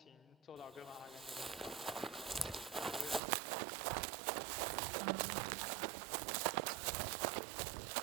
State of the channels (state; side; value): drops out; left; at 3.2 s